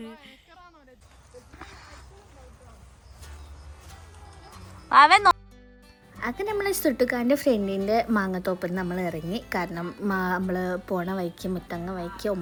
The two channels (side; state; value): both; identical; correlation 1.00